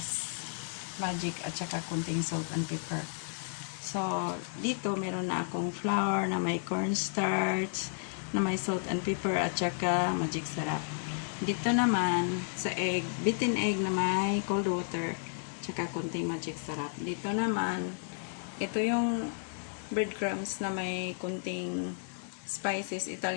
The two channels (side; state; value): right; silent; digital silence